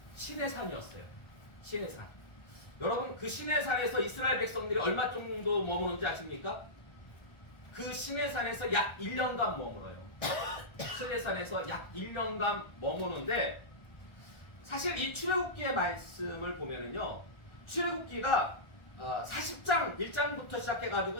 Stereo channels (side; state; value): right; late; 1.3 ms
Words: 시내산이었어요. 시내산. 여러분, 그 시내산에서 이스라엘 백성들이 얼마 정도 머무는지 아십니까? 그 시내산에서 약 1년간 머물어요. 시내산에서 약 1년간 머무는데, 사실 이 출애굽기의 말씀을 보면은요, 출애굽기가 40장 1장부터 시작해가지고